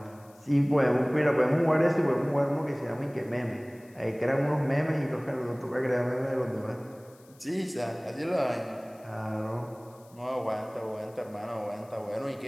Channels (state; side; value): noise; left; hiss, 28 dB below the sound